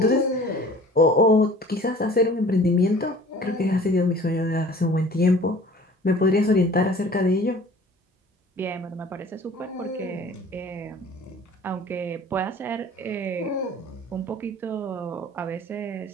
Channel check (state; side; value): normal; both; correlation 0.47